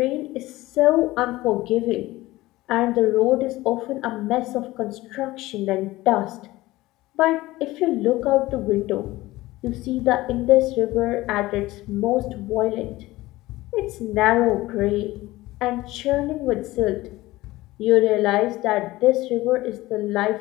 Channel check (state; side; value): quieter; right; 18.4 dB